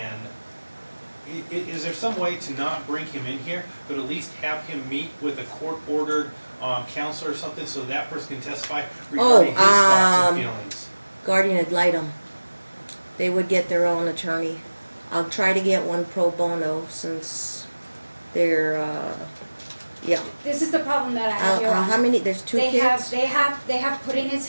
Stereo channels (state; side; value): inverted; both; correlation -1.00